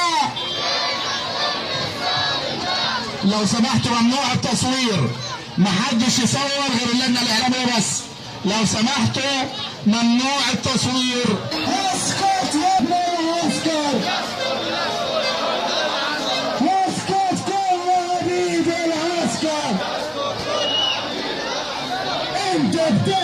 لو سمحتوا ممنوع التصوير، محدش يصور غير اللجنة الإعلامية بس. لو سمحتوا ممنوع التصوير. اسكت يا ابني، اسكت اسكت كل عبيد العسكر. انت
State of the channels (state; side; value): identical; both; correlation 1.00